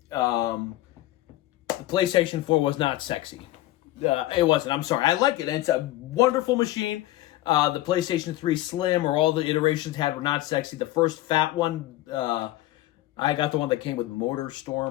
The PlayStation 4 was not sexy. It wasn't. I'm sorry. I like it. It's a wonderful machine. The PlayStation 3 Slim or all the iterations had were not sexy. The first fat one, I got the one that came with Motor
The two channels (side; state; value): right; quieter; 16.2 dB